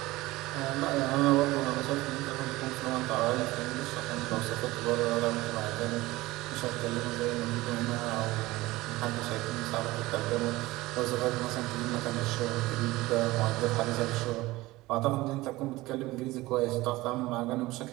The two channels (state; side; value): quieter; left; 19.3 dB